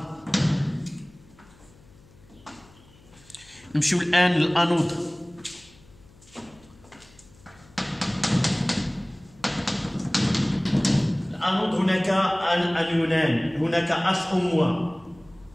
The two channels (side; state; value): left; noise; hum, 26 dB below the sound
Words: نمشيو الآن للأنود. الأنود هناك أنيونان، هناك اش او موان